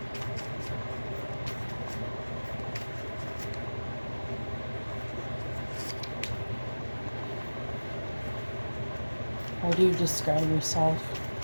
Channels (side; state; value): both; inverted; correlation -1.00